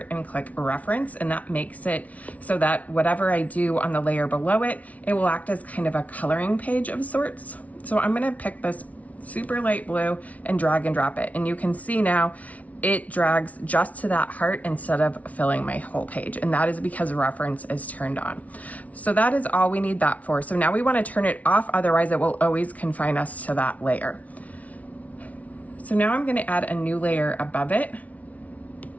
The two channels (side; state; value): right; late; 0.069 ms